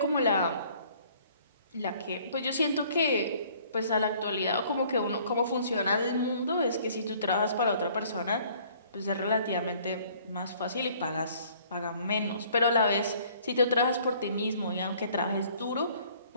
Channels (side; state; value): both; inverted; correlation -0.57